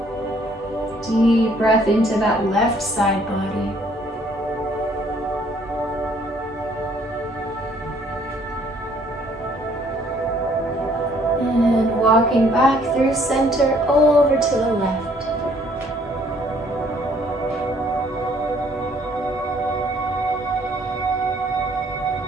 Deep breath into that left side body. walking back through center over to the left.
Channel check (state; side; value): normal; both; correlation 0.62